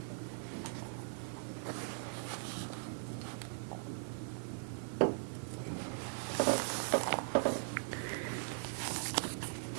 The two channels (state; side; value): silent; left; 51 dB below the other